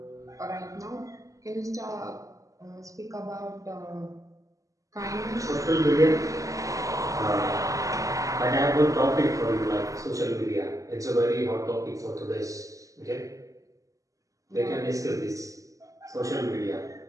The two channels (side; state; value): left; late; 0.16 ms